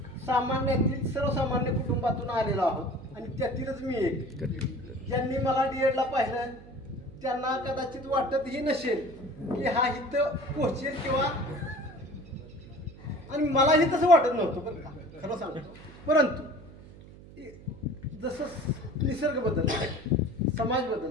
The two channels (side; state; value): right; noise; hum, 19 dB below the sound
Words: सामान्यातील सर्वसामान्य कुटुंबातून आलेलो आहोत आणि त्यातीलच मी एक. ज्यांनी मला डीएडला पाहिलं त्यांना कदाचित वाटतही नसेल की हा इथं पोहोचेल किंवा, आणि मलाही तसं वाटत नव्हतं बरं का, खरं सांगतो. परंतु जसं निसर्ग बदलला, समाज